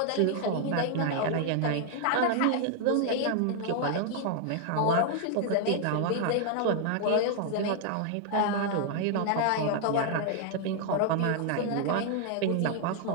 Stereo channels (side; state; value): both; different; correlation 0.00